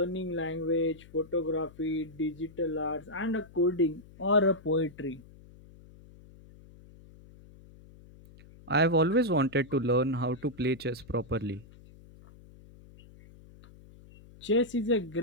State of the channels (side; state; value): left; noise; hum, 22 dB below the sound